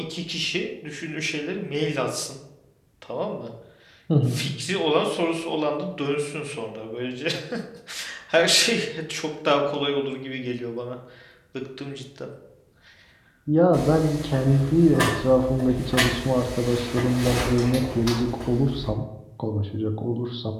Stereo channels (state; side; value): identical; both; correlation 1.00